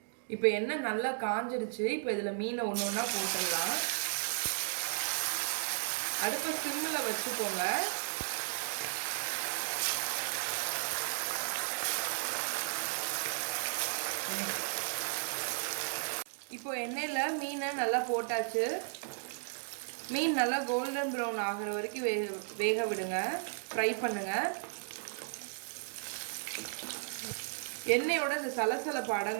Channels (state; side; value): silent; left; digital silence